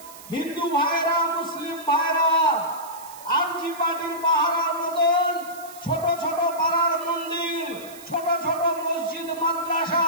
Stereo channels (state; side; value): noise; right; hiss, 18 dB below the sound